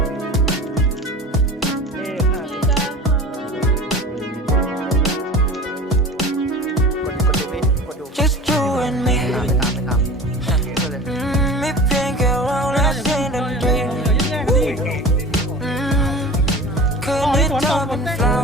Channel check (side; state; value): both; normal; correlation 0.37